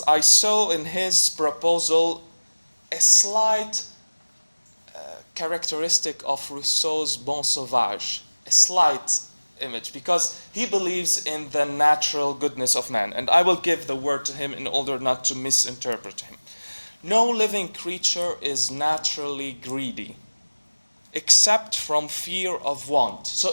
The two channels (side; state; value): both; inverted; correlation -1.00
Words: I saw in his proposal a slight characteristic of Rousseau's Bon Sauvage, a slight image, because he believes in the natural goodness of man. And I will give the word to him in order not to misinterpret him. No living creature is naturally greedy, except from fear of want.